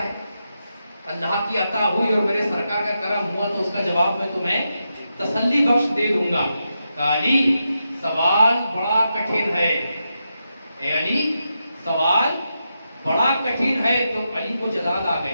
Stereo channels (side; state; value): both; inverted; correlation -0.86